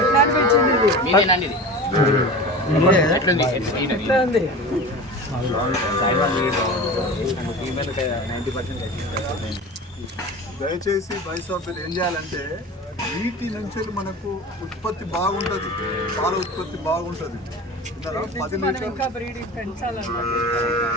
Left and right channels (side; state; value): both; normal; correlation 0.33